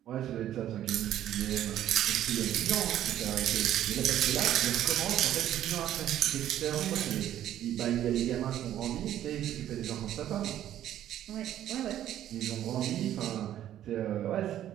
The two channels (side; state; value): left; quieter; 11.8 dB